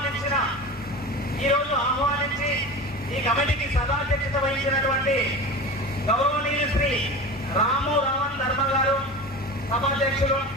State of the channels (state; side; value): normal; both; correlation 0.31